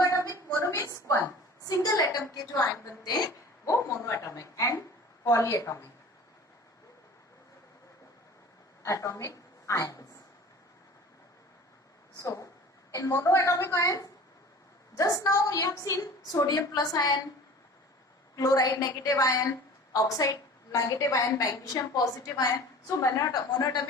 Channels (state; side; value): normal; both; correlation 0.42